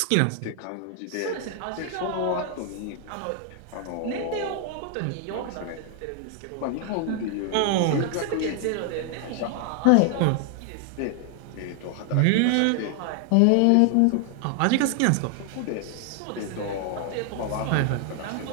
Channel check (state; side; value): different; both; correlation 0.00